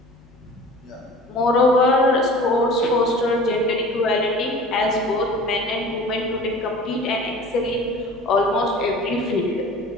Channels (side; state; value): both; normal; correlation 0.42